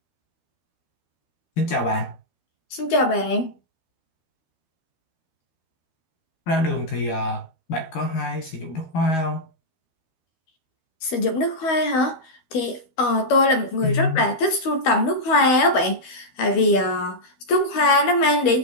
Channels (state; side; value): late; right; 12 ms